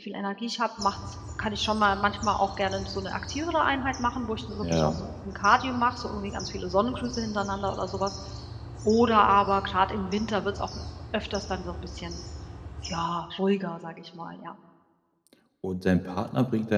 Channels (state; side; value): identical; both; correlation 1.00